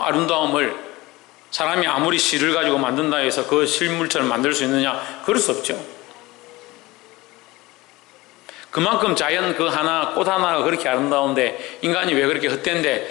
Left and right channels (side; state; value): right; quieter; 20.4 dB